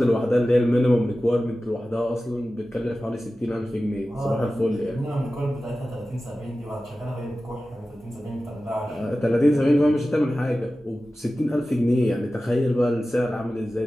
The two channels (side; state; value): both; normal; correlation 0.95